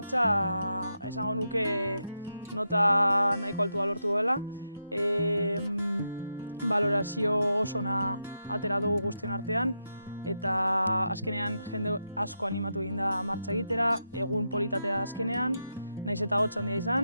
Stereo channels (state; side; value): inverted; both; correlation -0.85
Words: esango nuke nota nahiko altua lortu duela. Balorazio oso ona atera dugu guztion artean, eta azkenean jende asko animatu egin da martxa egitera, egun politatea azkenean, nahiz eta hotz handia